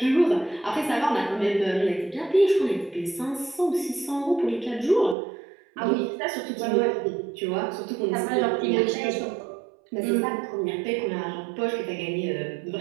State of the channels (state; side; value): drops out; left; at 5.2 s